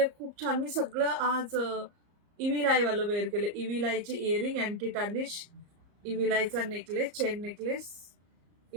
खूप छान, मी सगळं आज इव्हिलाई वालं वेअर केलं. इव्हिलाईचे इयरिंग अँटी टार्निश, इव्हिलाईचा नेकलेस, चेन नेकलेस,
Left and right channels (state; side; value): late; left; 34 ms